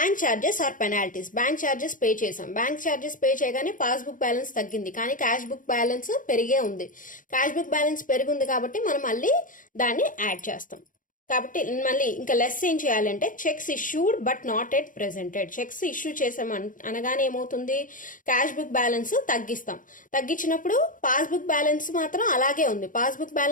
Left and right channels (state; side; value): late; right; 0.39 ms